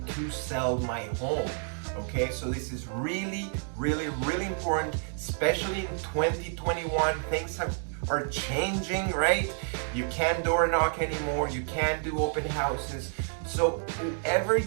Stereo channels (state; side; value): silent; left; 57 dB below the other